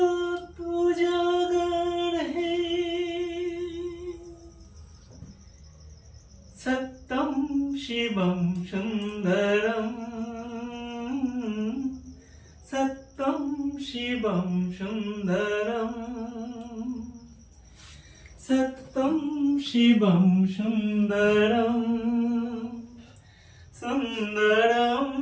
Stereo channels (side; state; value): both; identical; correlation 1.00